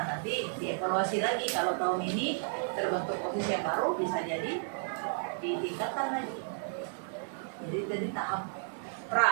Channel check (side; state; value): left; silent; digital silence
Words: nanti dievaluasi lagi kalau tahun ini terbentuk OSIS yang baru bisa jadi ditingkatkan lagi. Jadi tadi tahap